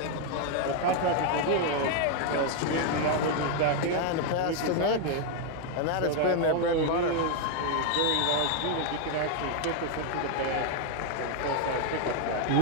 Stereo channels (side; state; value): both; different; correlation 0.00